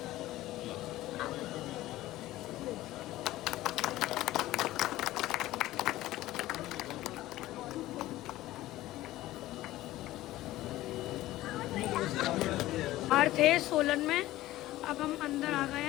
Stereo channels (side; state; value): right; quieter; 16.0 dB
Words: थे सोलन में, अब हम अंदर आ गए